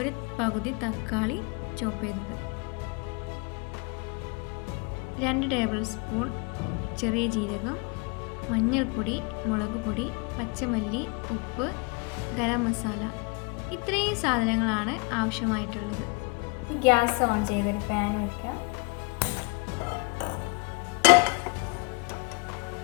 പകുതി തക്കാളി ചോപ്പ് ചെയ്തത്, 2 ടേബിൾ സ്പൂൺ ചെറിയ ജീരകം, മഞ്ഞൾപ്പൊടി, മുളക് പൊടി, പച്ചമല്ലി, ഉപ്പ്, ഗരം മസാല. ഇത്രയും സാധനങ്ങളാണ് ആവശ്യമായിട്ടുള്ളത്. ഗ്യാസ് ഓൺ ചെയ്തൊരു പാൻ വയ്ക്കാം.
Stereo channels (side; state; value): right; quieter; 31.8 dB